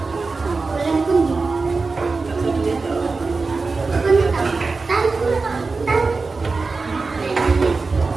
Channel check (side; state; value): left; quieter; 4.1 dB